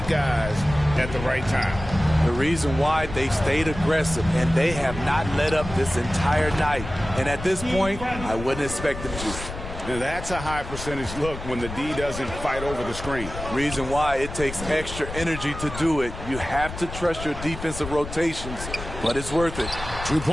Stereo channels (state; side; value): noise; left; rumble, 10 dB below the sound